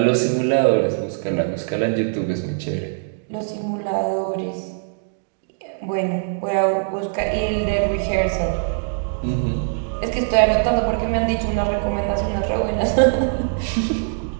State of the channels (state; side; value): silent; left; digital silence